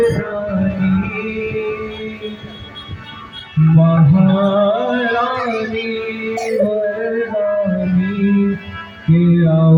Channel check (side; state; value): both; identical; correlation 1.00